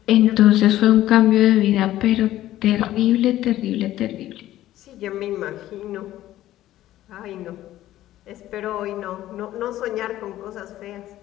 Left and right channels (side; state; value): right; quieter; 14.1 dB